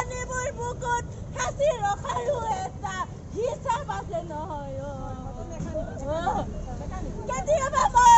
বুকুত সাঁচি ৰখাৰো এটা হিচাপ আছে নহয় কেতিয়াবা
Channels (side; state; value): both; identical; correlation 1.00